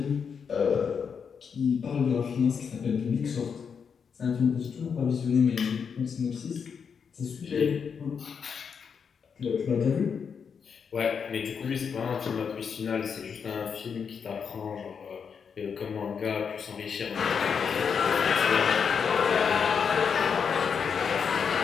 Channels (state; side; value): quieter; right; 6.5 dB